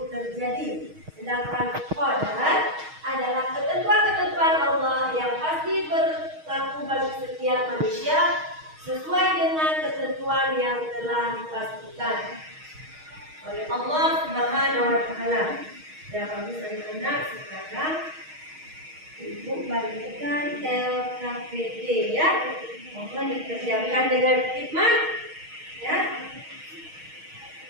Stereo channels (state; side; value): late; left; 6.4 ms